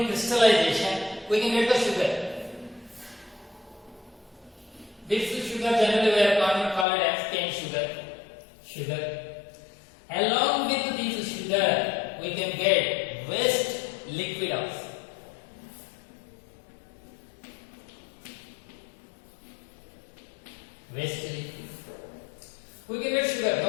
crystallization. We can get the sugar. This sugar generally we are called as cane sugar. Along with this sugar, we can get waste liquid also. We can get sugar, no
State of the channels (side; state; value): right; drops out; at 6.9 s